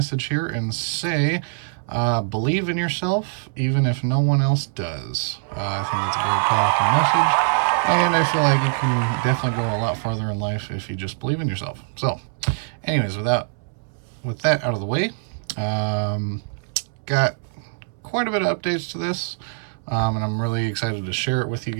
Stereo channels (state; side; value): silent; left; 63 dB below the other